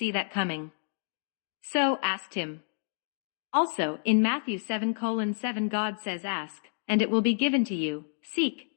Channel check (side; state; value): right; silent; digital silence